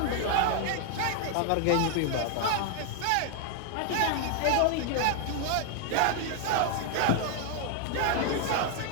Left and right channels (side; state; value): both; different; correlation 0.00